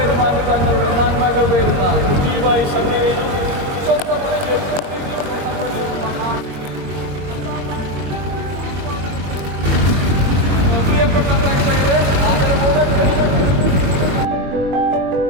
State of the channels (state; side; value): late; left; 22 ms